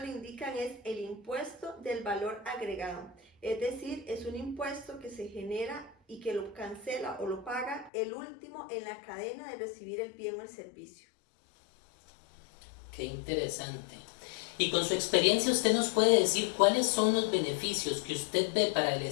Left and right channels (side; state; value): right; drops out; at 7.9 s